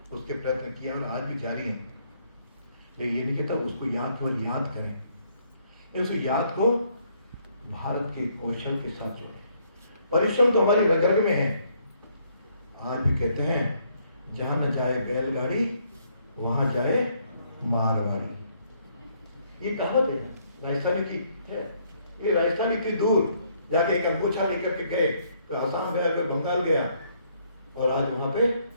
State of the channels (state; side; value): inverted; both; correlation -0.69